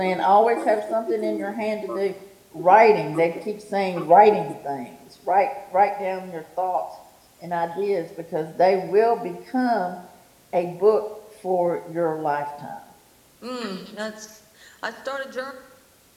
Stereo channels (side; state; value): both; identical; correlation 1.00